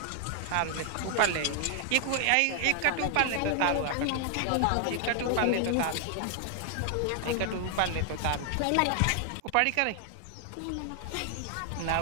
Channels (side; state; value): both; different; correlation 0.00